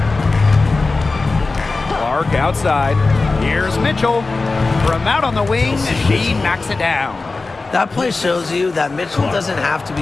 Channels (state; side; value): quieter; right; 3.7 dB